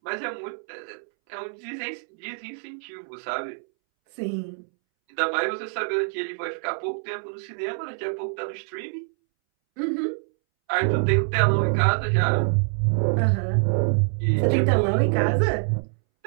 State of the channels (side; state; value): left; silent; 62 dB below the other